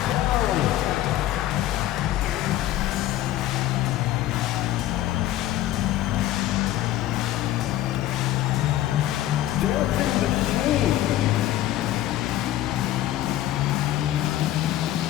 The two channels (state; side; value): quieter; right; 13.9 dB